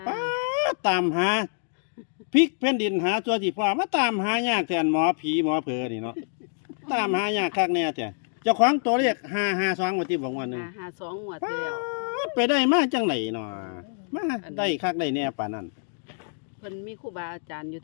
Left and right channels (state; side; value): silent; right; 61 dB below the other